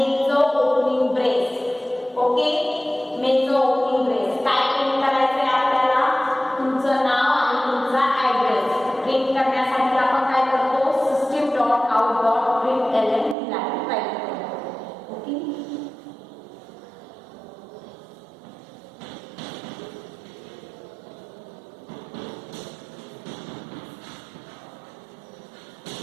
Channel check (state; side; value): drops out; left; at 13.4 s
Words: ओपनिंग ब्रेस. ओके. मेनचं ओपनिंग ब्रेस काय प्रिंट करायचंय आपल्याला तुमचं नाव आणि तुमचा ॲड्रेस प्रिंट करण्यासाठी आपण काय करतो system dot out dot print LN ही लाईन टाईप करतो. ओके.